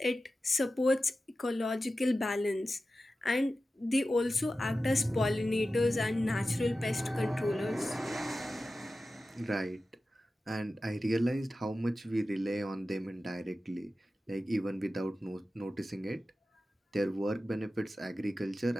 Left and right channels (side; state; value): both; normal; correlation 0.94